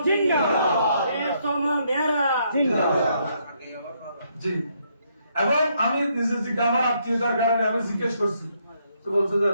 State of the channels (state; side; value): inverted; both; correlation -0.73